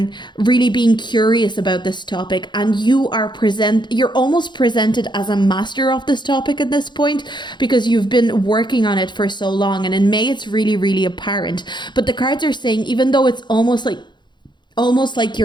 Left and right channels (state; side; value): late; right; 0.22 ms